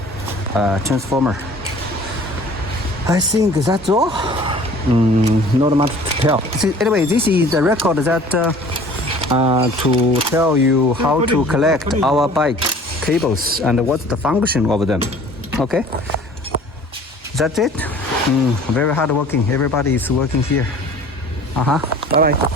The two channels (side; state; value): both; normal; correlation 0.48